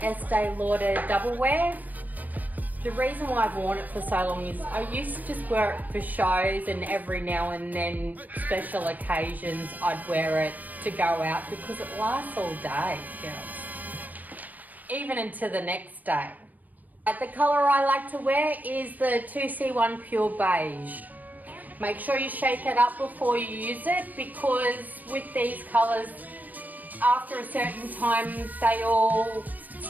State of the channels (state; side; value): late; left; 0.081 ms